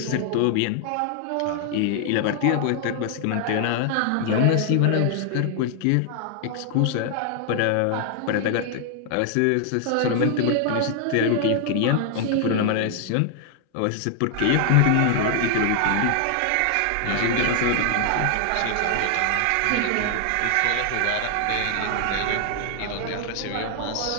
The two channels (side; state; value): both; different; correlation 0.00